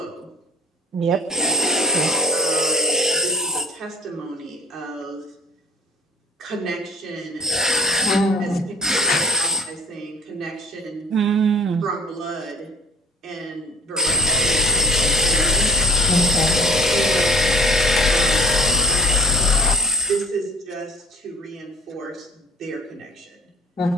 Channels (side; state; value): both; normal; correlation 0.53